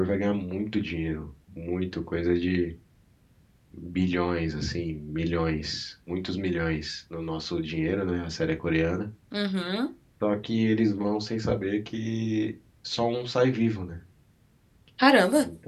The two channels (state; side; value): identical; both; correlation 1.00